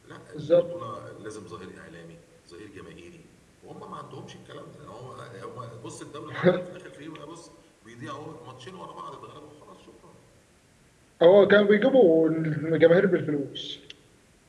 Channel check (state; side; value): identical; both; correlation 1.00